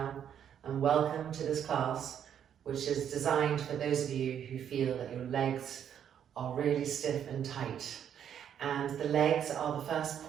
and welcome to this class, which is designed for those of you who feel that your legs are really stiff and tight. And the legs are the first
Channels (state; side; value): quieter; left; 9.1 dB